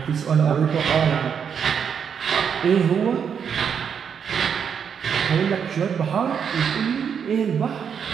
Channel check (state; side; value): quieter; left; 7.3 dB